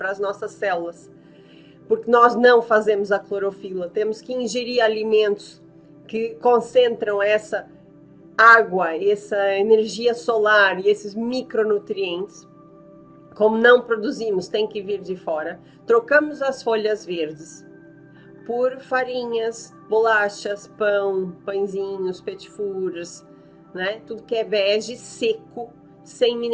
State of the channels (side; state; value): both; identical; correlation 1.00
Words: as nossas células. Porque nós não fazemos a clorofila, temos que ingerir alimentos que concentram essa água, essa energia solar e esses micronutrientes. Como não produzimos, tem que vir de fora. Trocamos as folhas verdes por farinhas, bolachas, pão, pãezinhos, petit fours, né? Tudo que é vege, seco, sem